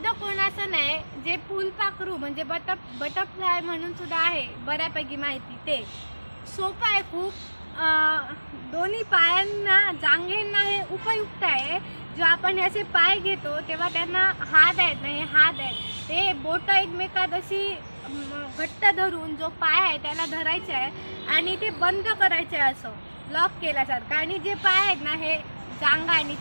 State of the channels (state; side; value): inverted; both; correlation -1.00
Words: कोणासन आहे, जे फुलपाखरू म्हणजे बटरफ्लाय म्हणून सुद्धा आहे, बऱ्यापैकी माहिती. ते सोपं आहे खूप. दोन्ही पायांना, जांघेंना हे उपयुक्त आहे. जो आपण असे पाय घेतो तेव्हा त्यांना हात आहेत ना, हे हात आहेत, ते बोटं एकमेकात अशी घट्ट धरून जो पाय आहे त्याला धरायचे आहे आणि ते बंद करायचे आहे, असं लॉक केल्यासारखं. आणि जे पाय आहेत ना, हे जांघा आणि